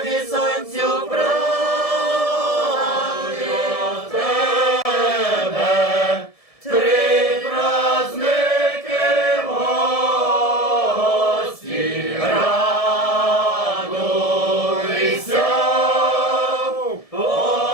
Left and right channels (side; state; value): right; late; 1.7 ms